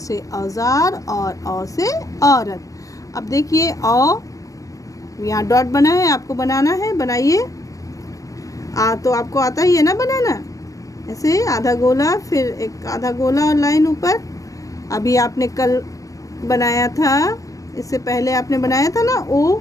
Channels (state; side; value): late; right; 0.16 ms